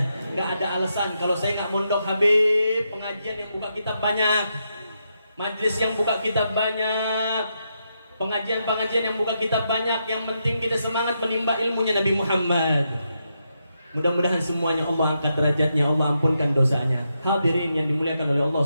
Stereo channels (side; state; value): both; inverted; correlation -0.83